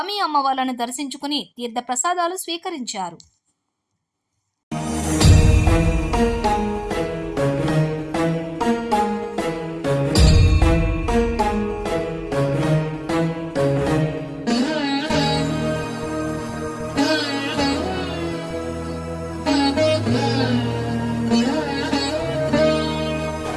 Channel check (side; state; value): both; identical; correlation 1.00